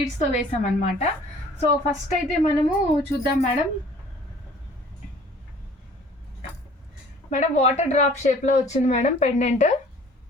వేసామన్నమాట. సో ఫస్ట్ అయితే మనము చూద్దాం మేడం. వాటర్ డ్రాప్ షేప్లో వచ్చింది మేడం పెండెంట్.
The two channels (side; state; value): both; normal; correlation 0.52